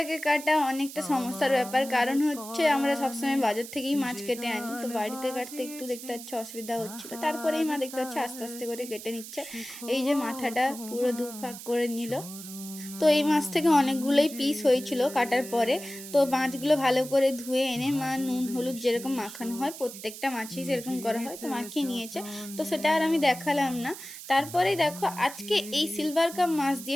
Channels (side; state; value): right; noise; hiss, 13 dB below the sound